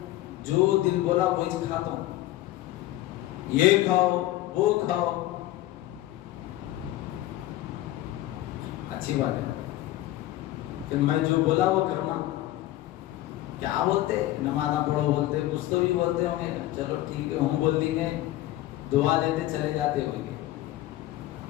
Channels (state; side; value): quieter; right; 15.4 dB